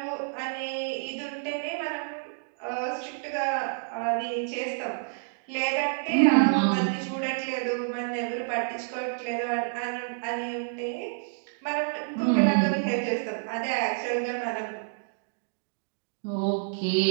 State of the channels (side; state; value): left; silent; digital silence